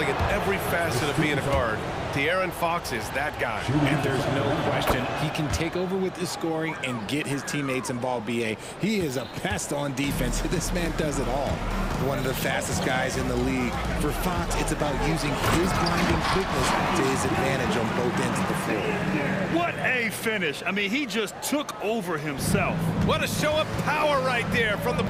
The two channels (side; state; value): both; identical; correlation 1.00